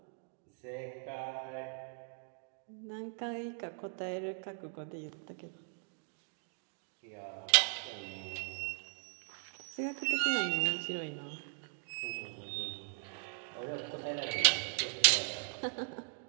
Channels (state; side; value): silent; left; 52 dB below the other